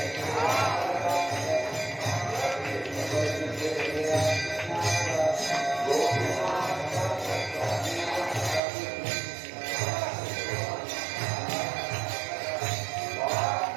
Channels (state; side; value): drops out; left; at 8.6 s